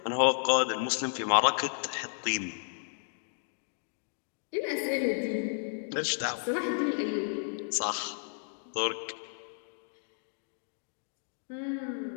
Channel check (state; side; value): silent; right; digital silence